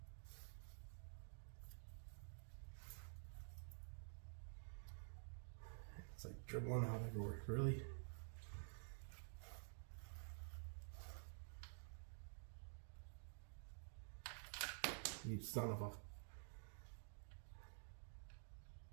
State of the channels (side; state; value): left; silent; digital silence